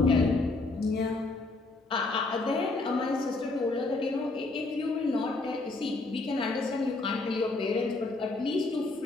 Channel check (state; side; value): quieter; right; 3.3 dB